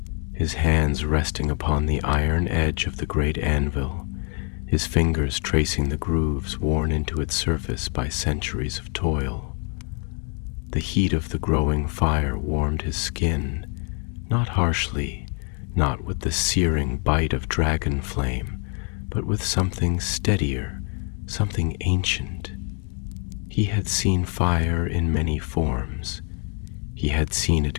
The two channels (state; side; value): quieter; right; 38.4 dB